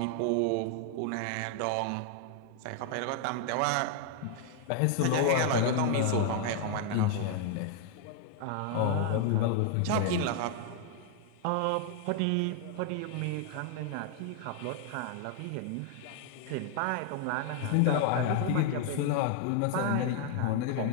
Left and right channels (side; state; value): both; different; correlation 0.00